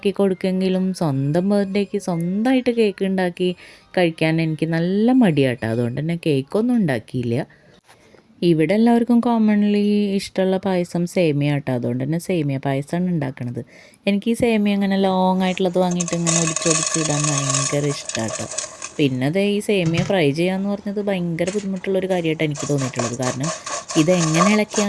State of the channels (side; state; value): both; identical; correlation 1.00